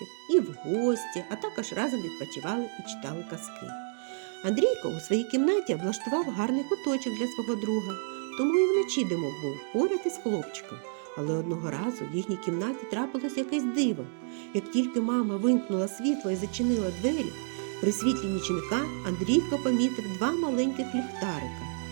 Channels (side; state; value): left; silent; 58 dB below the other